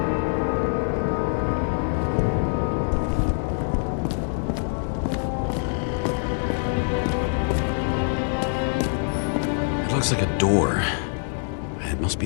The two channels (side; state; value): right; silent; 61 dB below the other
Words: looks like a door. It must